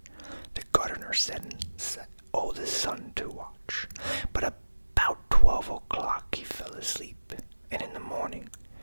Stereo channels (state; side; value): inverted; both; correlation -1.00